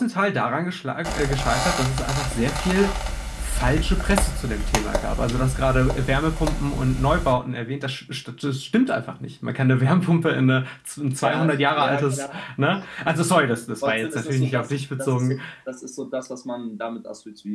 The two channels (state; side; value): identical; both; correlation 1.00